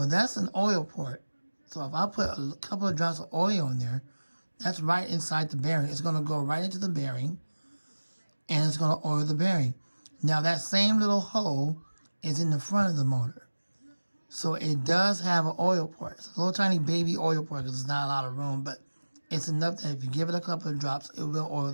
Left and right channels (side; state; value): both; inverted; correlation -1.00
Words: that's an oil port. So if I put a couple of drops of oil in there, that's right inside the bearing. It's going to go right into the bearing, and it's going to oil the bearing. Now, that same little hole is in the front of the motor. So it does have an oil port. It's a little tiny baby oil port because there's not a lot of room, but it's enough that if you give it a couple of drops, it will oil